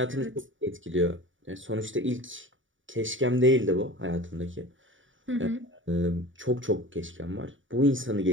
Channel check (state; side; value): late; left; 0.56 ms